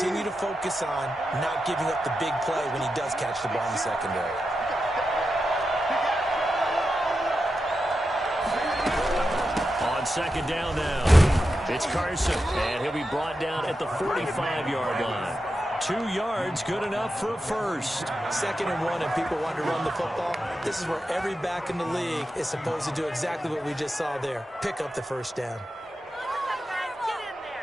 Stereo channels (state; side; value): normal; both; correlation 0.89